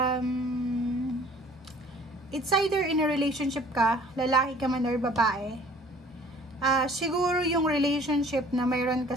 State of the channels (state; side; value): normal; both; correlation 0.52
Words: it's either in a relationship ka, lalaki ka man or babae. Siguro yung relationship na mayroon